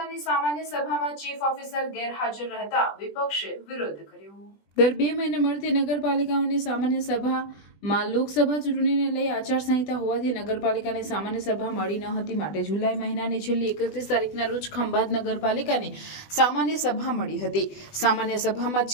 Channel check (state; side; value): late; right; 20 ms